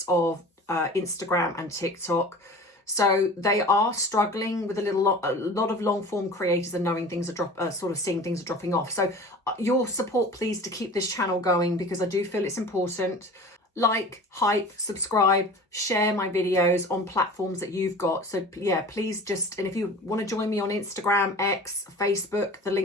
of Instagram and TikTok. So they are struggling with a lot of long form creators and knowing things are sort of seeing things are dropping off. So your support, please, to keep this channel going, because I do feel it's important. Like, hype, subscribe, share my videos on platforms that you've got. So yeah, please just, and if you want to join me on Instagram, X, Facebook, the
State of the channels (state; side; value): normal; both; correlation 0.40